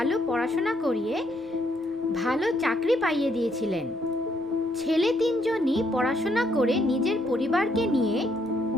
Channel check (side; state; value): both; normal; correlation 0.72